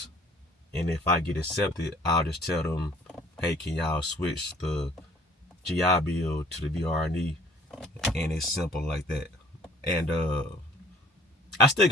And if I get accepted, I'll just tell them, hey, can y'all switch the GI Bill to the VR&E? And it's simple like that. And I still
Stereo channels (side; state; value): both; normal; correlation 0.56